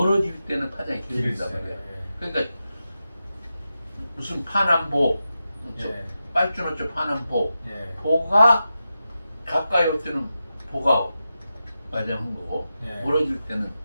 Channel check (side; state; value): both; inverted; correlation -0.91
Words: 때는 파장이 길어진단 길어지죠. 말이야. 예. 그러니까 무슨 파남보, 예. 빨주노초 파남보, 예. 보가 가까이 올 때는 보가 맞아한 거고 예. 멀어질 때는